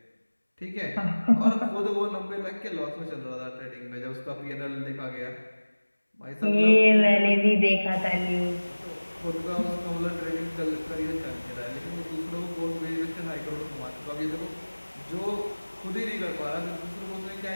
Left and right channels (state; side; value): inverted; both; correlation -1.00